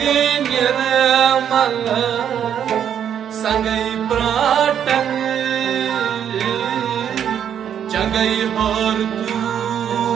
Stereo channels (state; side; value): quieter; left; 9.0 dB